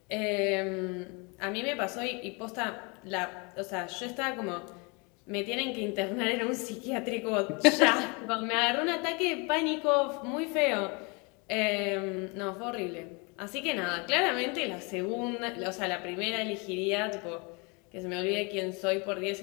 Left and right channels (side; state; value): right; quieter; 30.8 dB